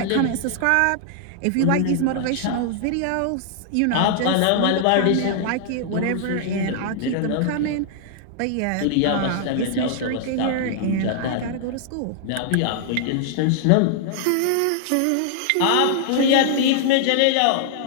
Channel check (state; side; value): different; both; correlation -0.01